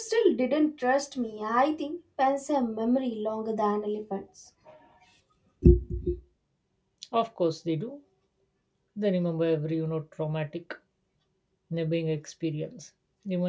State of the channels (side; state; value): both; identical; correlation 1.00